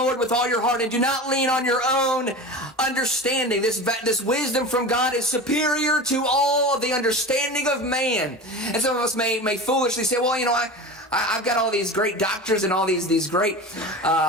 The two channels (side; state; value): both; normal; correlation 0.31